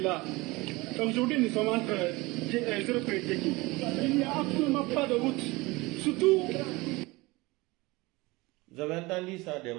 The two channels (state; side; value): quieter; left; 22.6 dB